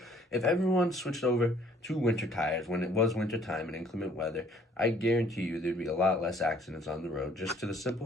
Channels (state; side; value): normal; both; correlation 0.59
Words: if everyone switched over to winter tires when it was winter time and inclement weather, I guarantee you there'd be a lot less accidents on the road, just to the